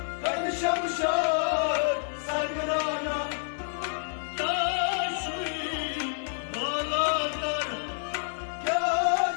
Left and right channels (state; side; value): silent; right; digital silence